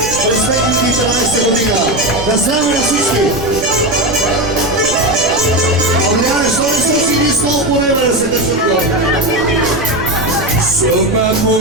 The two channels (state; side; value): noise; right; rumble, 14 dB below the sound